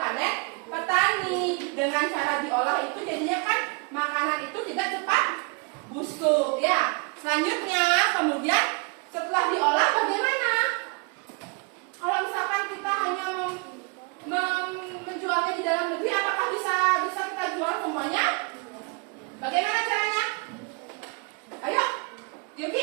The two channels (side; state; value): left; quieter; 31.9 dB